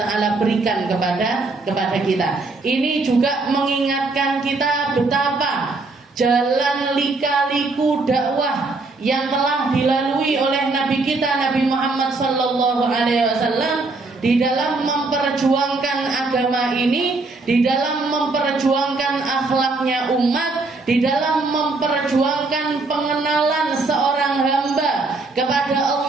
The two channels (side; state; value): left; quieter; 3.5 dB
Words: taala berikan kepada kita. Ini juga mengingatkan kita betapa jalan lika-liku dakwah yang telah dilalui oleh Nabi kita Nabi Muhammad sallallahu alaihi wasallam di dalam memperjuangkan agama ini, di dalam memperjuangkan akhlaknya umat, di dalam memperjuangkan pengenalan seorang hamba kepada